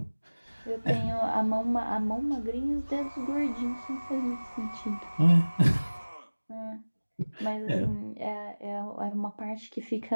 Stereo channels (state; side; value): inverted; both; correlation -1.00